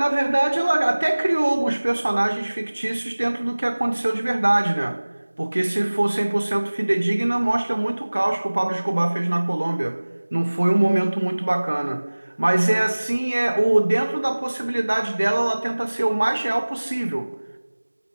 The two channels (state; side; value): inverted; both; correlation -1.00